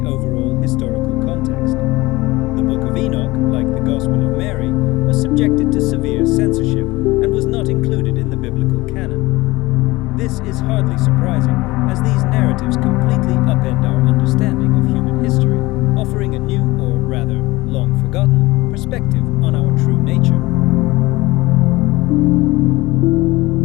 overall historical context. The Book of Enoch, like the Gospel of Mary, was subjected to severe censorship and was not included in the biblical canon. This is hardly surprising, as these narratives completely upend our understanding of human history, offering a new, or rather, long-forgotten, perspective on our true nature.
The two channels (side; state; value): right; quieter; 20.5 dB